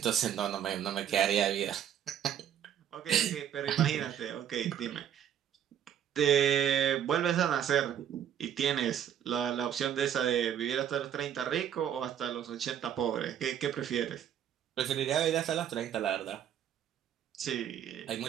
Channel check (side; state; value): left; quieter; 9.6 dB